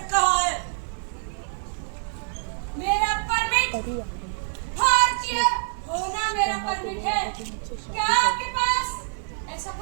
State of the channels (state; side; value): silent; left; digital silence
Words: कहाँ है? मेरा परमिट भारतीय होना मेरा परमिट है। क्या आपके पास ऐसा